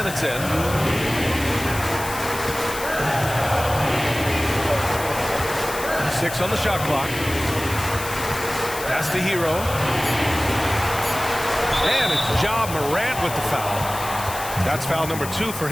in. Six on the shot clock. Pass to Hero. And it's Ja Morant with the foul. That's foul number 2 for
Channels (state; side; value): noise; left; hiss, 10 dB below the sound